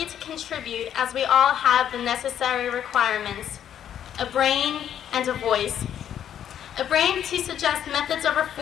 to contribute as we all have the necessary requirements, a brain and a voice. A brain to suggest methods of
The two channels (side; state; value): right; quieter; 9.8 dB